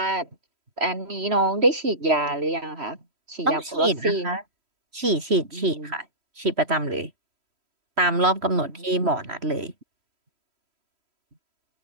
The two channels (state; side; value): late; left; 3.1 ms